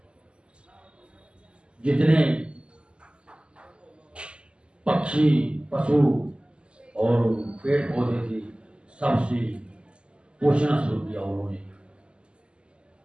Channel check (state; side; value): late; left; 0.052 ms